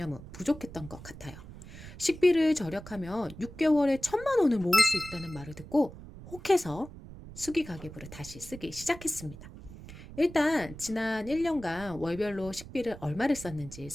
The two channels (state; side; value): noise; right; rumble, 15 dB below the sound